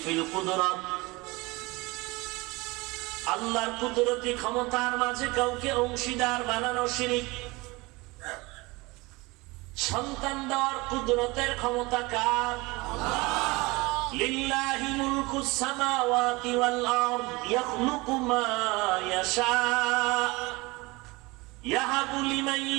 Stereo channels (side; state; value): left; quieter; 23.6 dB